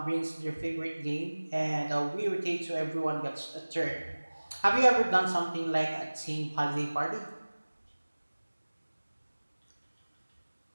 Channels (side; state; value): both; inverted; correlation -1.00